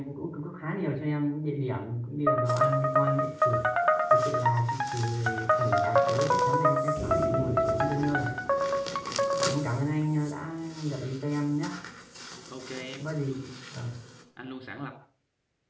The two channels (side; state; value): both; identical; correlation 1.00